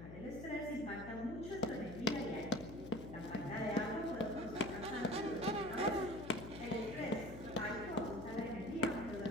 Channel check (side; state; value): left; noise; hum, 11 dB below the sound